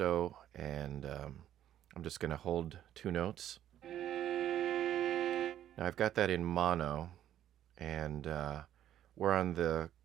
and I'm just going to hold two notes. Now I've got that in mono, and we're on the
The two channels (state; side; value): quieter; left; 11.5 dB